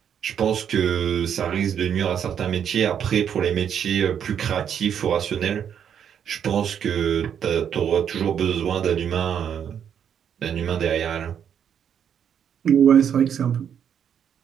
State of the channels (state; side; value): quieter; left; 8.5 dB